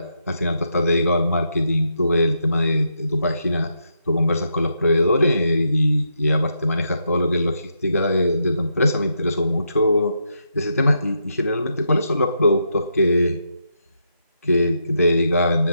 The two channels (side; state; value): both; inverted; correlation -0.81